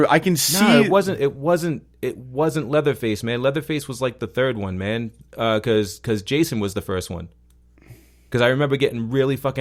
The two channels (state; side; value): identical; both; correlation 1.00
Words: can see. Nah, it wasn't Leatherface, man. Leatherface was like the third one, man. Because Jason was the first one. Because I remember getting really